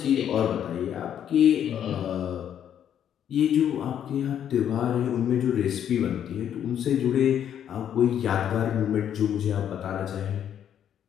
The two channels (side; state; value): right; quieter; 9.6 dB